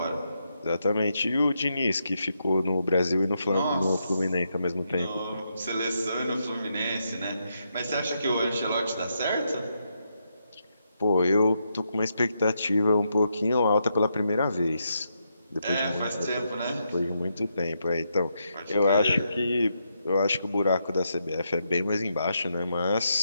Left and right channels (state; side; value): inverted; both; correlation -0.81